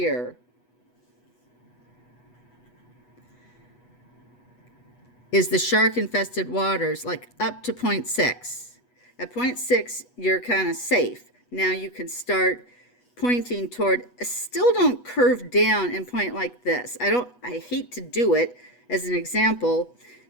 is the shark-infested waters, like up to 0.6. At 0.6, you're kind of safe. Now you can start pointing toward, still don't curve down and point like this. I hate to do it as an example.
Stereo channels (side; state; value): right; late; 8.2 ms